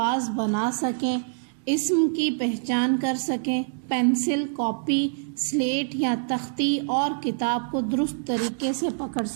بنا سکیں، اسم کی پہچان کر سکیں، پینسل، کاپی، سلیٹ یا تختی اور کتاب کو درست طریقے سے پکڑ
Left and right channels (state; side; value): silent; left; digital silence